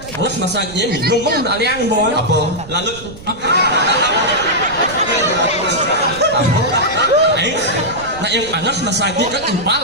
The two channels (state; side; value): noise; right; rumble, 17 dB below the sound